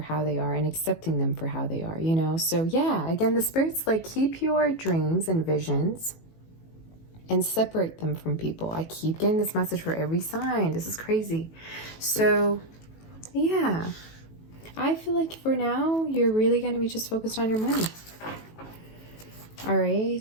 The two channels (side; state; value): right; late; 18 ms